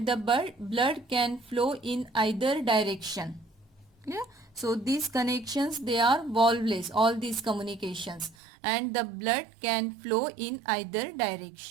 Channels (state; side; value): drops out; left; at 8.3 s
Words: the blood can flow in either direction. Yeah? So these connections, they are valveless, all these communications, and the blood can flow in either